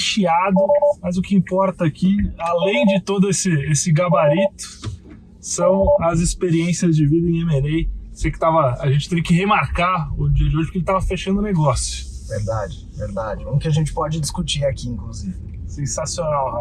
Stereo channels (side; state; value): both; identical; correlation 1.00